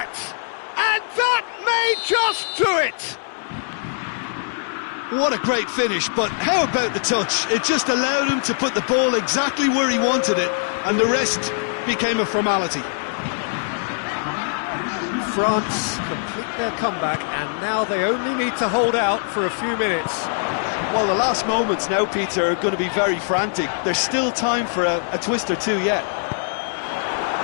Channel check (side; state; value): right; silent; digital silence